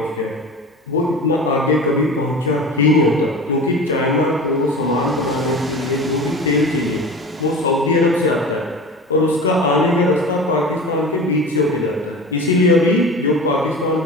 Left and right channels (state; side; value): normal; both; correlation 0.34